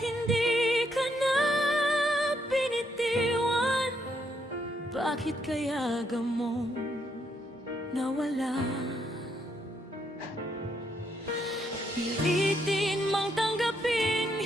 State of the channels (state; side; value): normal; both; correlation 0.76